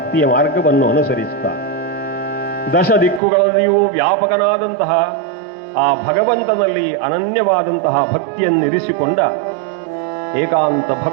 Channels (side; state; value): left; drops out; at 3.2 s